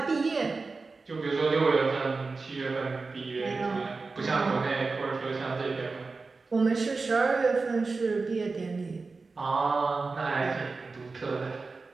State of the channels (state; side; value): quieter; left; 4.0 dB